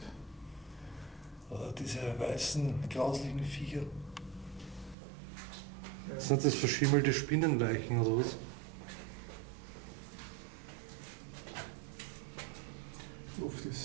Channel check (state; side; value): drops out; left; at 5.0 s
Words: Diese weißen, grauslichen Viecher. Ja. Sind das verschimmelte Spinnenleichen oder was? Luft